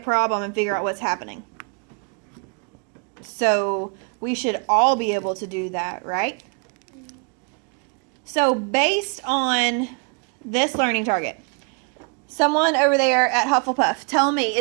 and figure out what's happening. So we should all be able to do that, right? So based on this learning target, someone over there at Hufflepuff, tell me,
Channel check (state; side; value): quieter; left; 35.8 dB